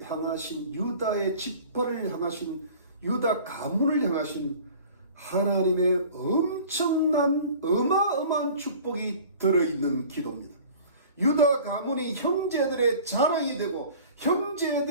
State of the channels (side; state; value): both; inverted; correlation -0.45